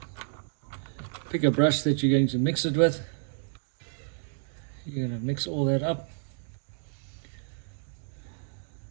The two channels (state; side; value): silent; left; digital silence